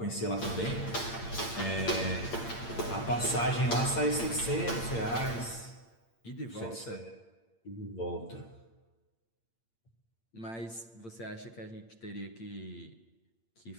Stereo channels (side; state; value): right; late; 8.7 ms